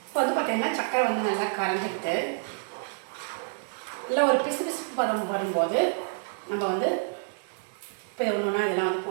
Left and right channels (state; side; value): silent; left; digital silence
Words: இப்போ வந்து பார்த்திங்கன்னா சர்க்கரை வந்து நல்லா கரைஞ்சிட்டு நல்லா ஒரு பிசு பிசுப்பு பதம் வரும்போது நம்ம வந்து இப்போ ஒன்று ஒன்றா இதெல்லாம் வந்து